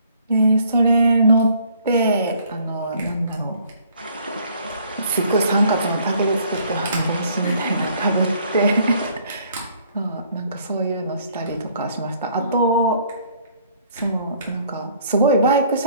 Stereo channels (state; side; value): inverted; both; correlation -0.61